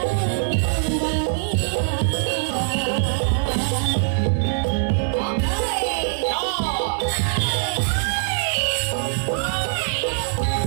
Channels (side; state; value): left; silent; 58 dB below the other